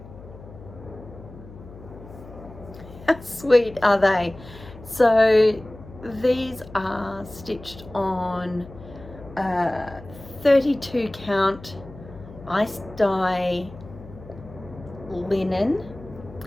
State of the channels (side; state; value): left; noise; hum, 17 dB below the sound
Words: How sweet are they? So these are stitched on 32 count ice dye linen